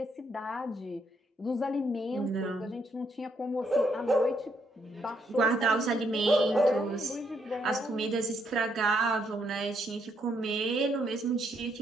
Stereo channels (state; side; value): normal; both; correlation 0.74